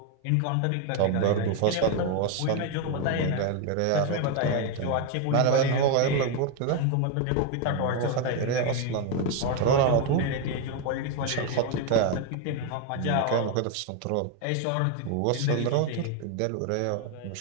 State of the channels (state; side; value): different; both; correlation 0.01